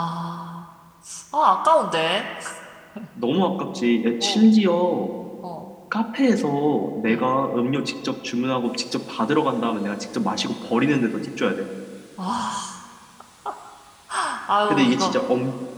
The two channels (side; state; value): both; identical; correlation 1.00